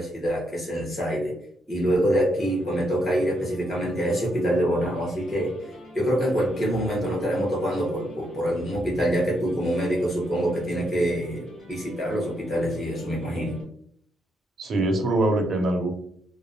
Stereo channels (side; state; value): both; normal; correlation 0.78